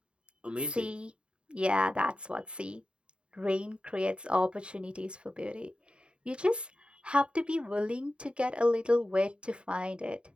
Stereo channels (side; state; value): left; late; 0.054 ms